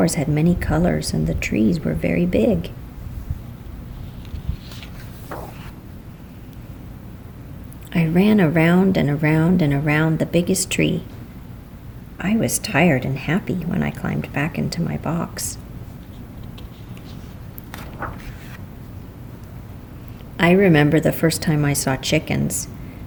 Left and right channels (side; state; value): both; identical; correlation 1.00